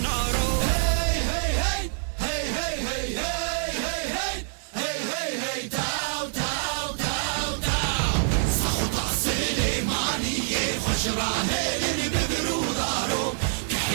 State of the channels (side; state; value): left; silent; 61 dB below the other